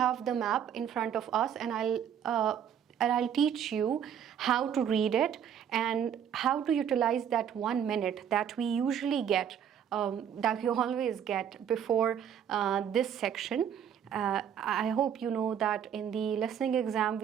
the map in front of us, and I'll teach you how to read it and how to utilize that 1 minute that we usually get, that we always get before this section. I hope you know that in the listening exam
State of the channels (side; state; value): left; quieter; 8.8 dB